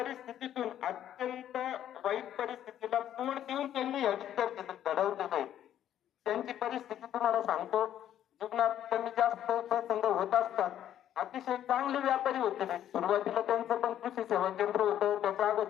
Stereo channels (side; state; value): right; quieter; 11.0 dB